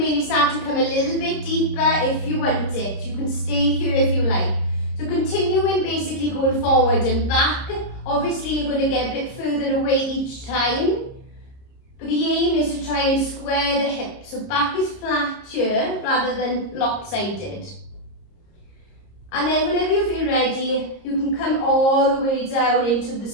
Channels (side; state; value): right; late; 30 ms